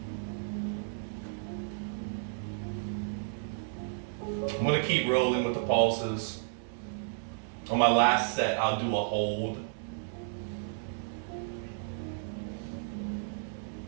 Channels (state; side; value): silent; left; digital silence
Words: I'm gonna keep rolling with the pulses. On my last set, I'll do a hold.